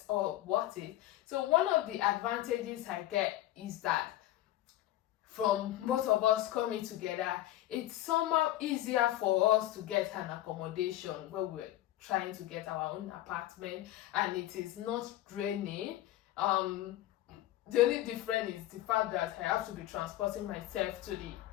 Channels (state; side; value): quieter; right; 14.5 dB